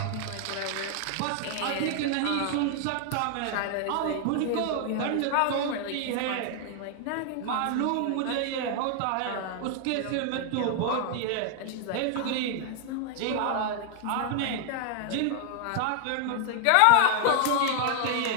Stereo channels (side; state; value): both; different; correlation 0.00